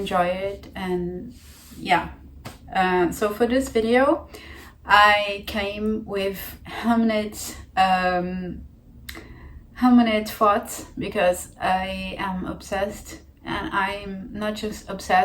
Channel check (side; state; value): both; identical; correlation 1.00